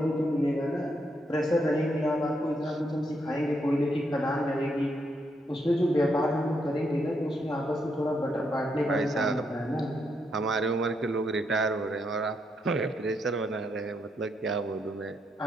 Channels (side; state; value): both; normal; correlation 0.78